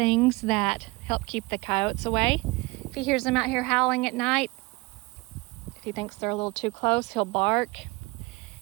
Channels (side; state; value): left; quieter; 24.6 dB